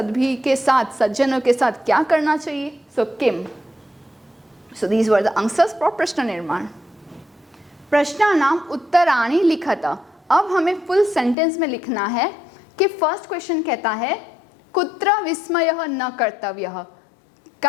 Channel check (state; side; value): drops out; right; at 11.4 s